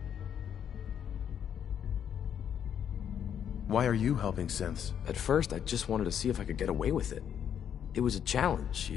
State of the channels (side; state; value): right; quieter; 8.8 dB